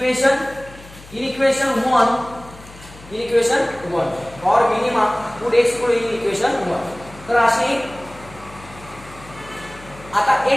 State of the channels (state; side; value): noise; left; hum, 20 dB below the sound